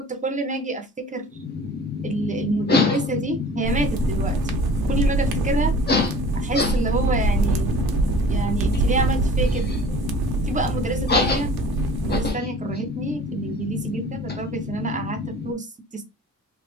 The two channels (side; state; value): both; normal; correlation 0.45